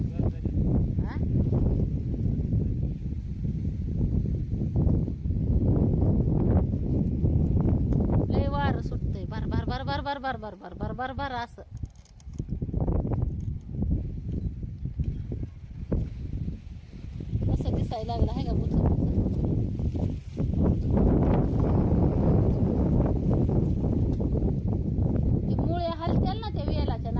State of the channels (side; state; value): both; identical; correlation 1.00